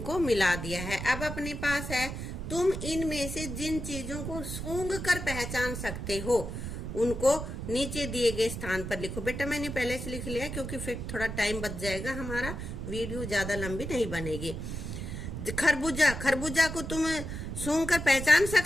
मिला दिया है। अब अपने पास है, तुम इनमें से जिन चीजों को सूंघ कर पहचान सकते हो उनको नीचे दिए गए स्थान पर लिखो। बेटा मैंने पहले से लिख लिया क्योंकि फिर थोड़ा टाइम बच जाएगा, हमारा वीडियो ज्यादा लंबी नहीं बनेगी। खरबूजा, खरबूजा को तुम सूंघ कर पहचान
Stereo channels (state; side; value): noise; right; rumble, 6 dB below the sound